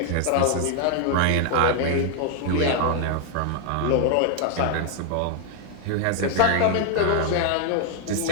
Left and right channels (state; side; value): different; both; correlation 0.00